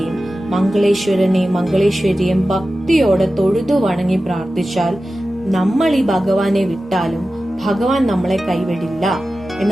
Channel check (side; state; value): both; normal; correlation 0.94